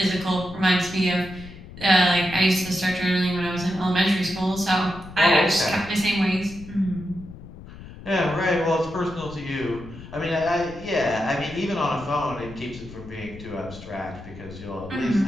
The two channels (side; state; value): left; noise; rumble, 15 dB below the sound